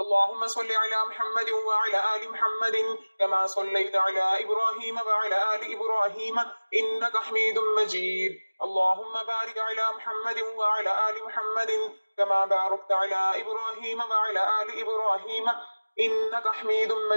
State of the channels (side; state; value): both; inverted; correlation -1.00